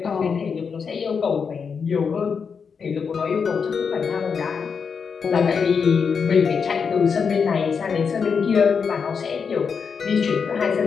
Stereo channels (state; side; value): quieter; right; 6.0 dB